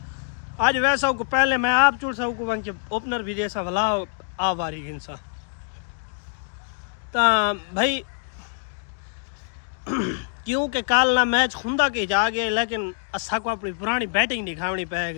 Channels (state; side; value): silent; right; digital silence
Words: آج ویسا کو پہلے میں آپ چوڑ سا کو ون کے اوپنر بھی جیسا بھلا آ واری گنسا تا بھائی کیونکہ کال نہ میچ خوندا کے جا گئے لیکن اسا کو اپنی پرانی بیٹنگ دکھاونی پے